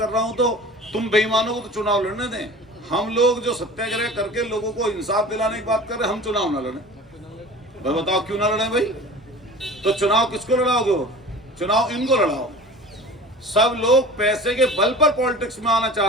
रहा हूं तो तुम बेईमानों को तो चुनाव लड़ने दें। हम लोग जो सत्याग्रह करके लोगों को इंसाफ दिलाने की बात कर रहे हैं, हम चुनाव ना लड़ें? भाई बताओ क्यों ना लड़ें भाई? तो चुनाव किसको लड़ाओगे? वो चुनाव इनको लड़ाओ। सब लोग पैसे के बल पर पॉलिटिक्स में आना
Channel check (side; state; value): both; normal; correlation 0.40